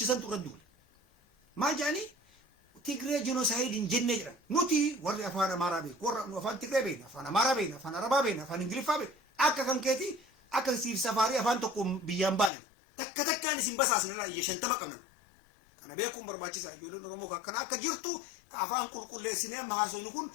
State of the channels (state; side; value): drops out; right; at 12.5 s